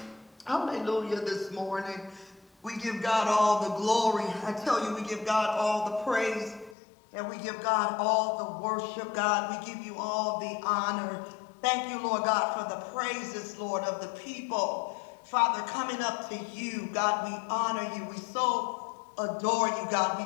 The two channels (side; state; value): right; drops out; at 6.8 s